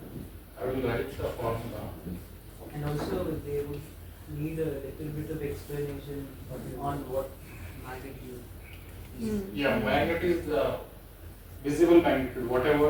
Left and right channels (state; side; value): identical; both; correlation 1.00